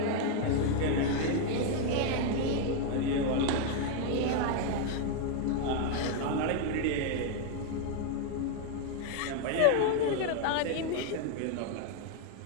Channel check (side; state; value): both; different; correlation 0.00